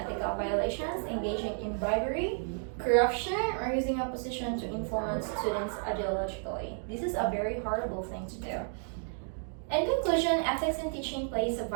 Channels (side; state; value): left; silent; 56 dB below the other